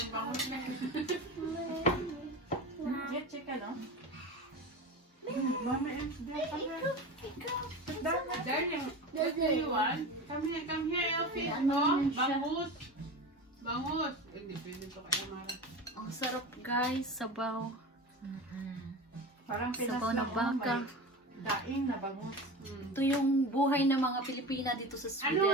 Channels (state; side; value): normal; both; correlation 0.29